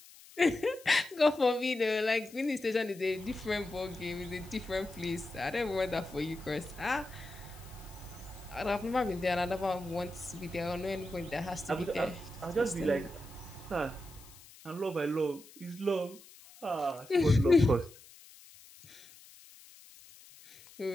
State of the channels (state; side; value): noise; left; hiss, 21 dB below the sound